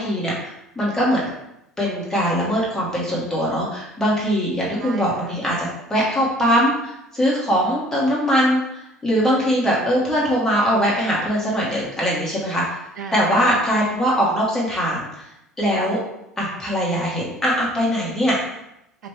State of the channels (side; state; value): both; normal; correlation 0.55